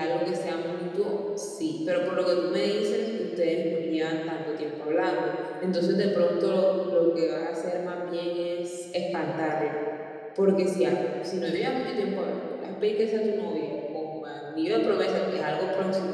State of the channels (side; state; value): both; identical; correlation 1.00